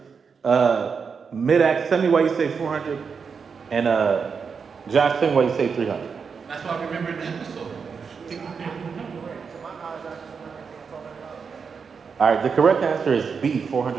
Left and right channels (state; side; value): quieter; left; 5.8 dB